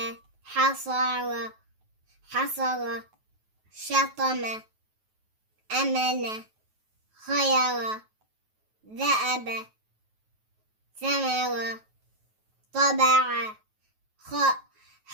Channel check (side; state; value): left; late; 9.3 ms